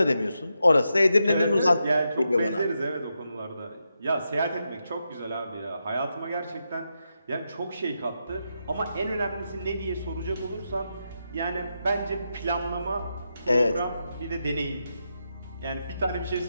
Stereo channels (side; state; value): both; inverted; correlation -0.85